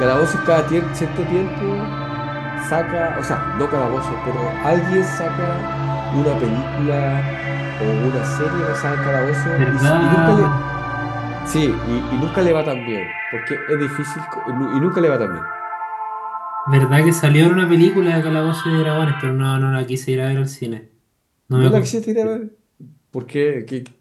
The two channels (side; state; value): both; identical; correlation 1.00